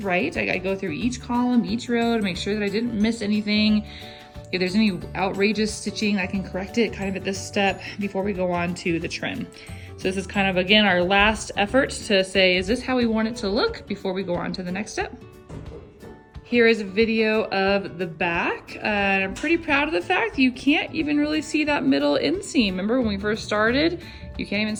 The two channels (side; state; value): both; identical; correlation 1.00